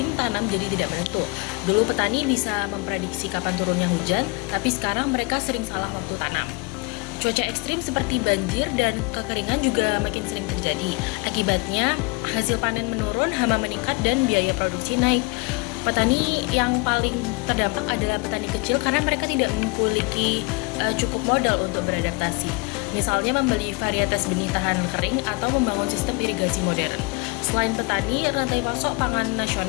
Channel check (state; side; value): quieter; right; 27.5 dB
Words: tanam jadi tidak menentu. Dulu petani bisa memprediksi kapan turunnya hujan, tapi sekarang mereka sering salah waktu tanam. Cuaca ekstrim seperti banjir dan kekeringan juga makin sering terjadi. Akibatnya, hasil panen menurun, hama meningkat, dan biaya produksi naik. Petani yang paling terdampak adalah petani kecil karena mereka tidak memiliki cukup modal untuk beradaptasi. Misalnya membeli varietas benih tahan kering atau membangun sistem irigasi modern. Selain petani, rantai pasok pangan